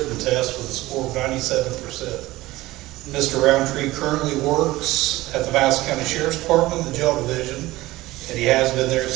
Test with a score of 97%. Mr. Roundtree currently works at the Madison County Sheriff's Department, the Jail Division, and he has been there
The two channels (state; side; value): quieter; left; 18.1 dB